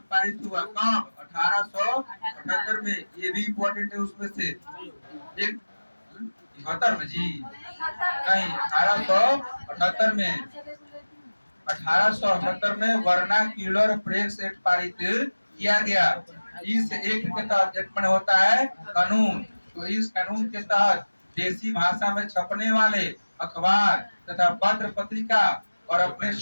पारित हुआ कब? 1878 में। ये भी इम्पोर्टेंट है उसमें से एक। 78 में जी नहीं, 1878 में। 1878 में वर्नाक्युलर प्रेस एक्ट पारित किया गया। इस एक्ट के तहत एक में होता है कानून। तो इस कानून के तहत देसी भाषा में छपने वाले अखबार तथा पत्र पत्रिका और अपने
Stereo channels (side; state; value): both; inverted; correlation -1.00